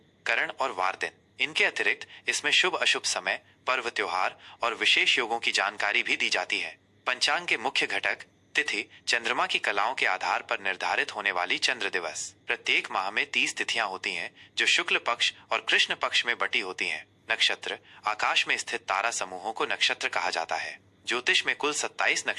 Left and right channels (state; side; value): identical; both; correlation 1.00